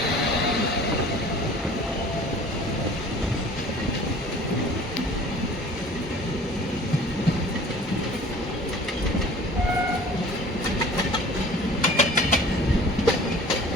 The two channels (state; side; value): normal; both; correlation 0.47